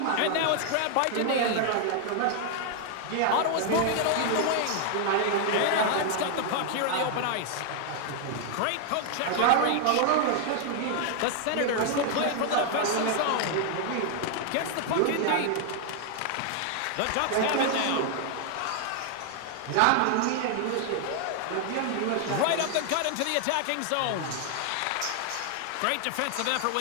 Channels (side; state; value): both; different; correlation 0.00